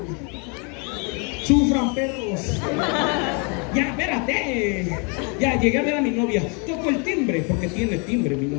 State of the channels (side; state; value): right; quieter; 34.6 dB